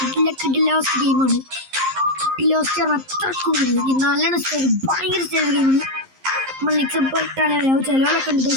കിഡിലോസ്റ്റ് ഗെയിമാണ്. കിഡിലോസ്റ്റ് അത്രക്കും നല്ലോണം സ്റ്റൈൽ, ഭയങ്കര സ്റ്റൈൽ ഗെയിമാണ്. നമ്മൾ നിക്ഷപ്പെട്ടാണ് ചിലവരൊക്കെ ഉണ്ട്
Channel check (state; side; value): late; left; 11 ms